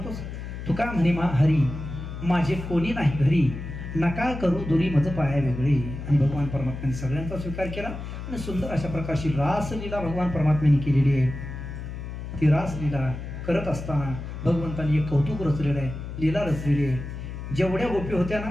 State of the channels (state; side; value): noise; left; hum, 8 dB below the sound